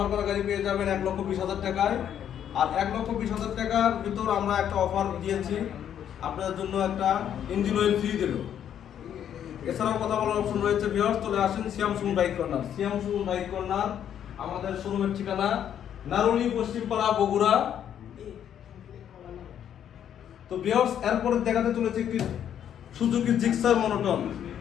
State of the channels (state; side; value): quieter; right; 9.6 dB